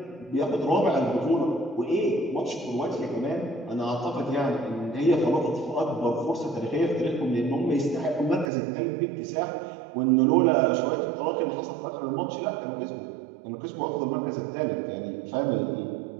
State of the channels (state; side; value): drops out; left; at 8.5 s